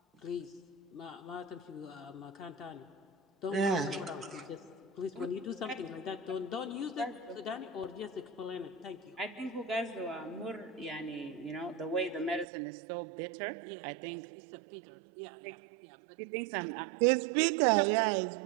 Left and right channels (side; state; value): left; drops out; at 12.5 s